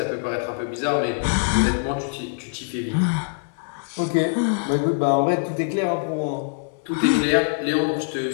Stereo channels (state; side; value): silent; right; 59 dB below the other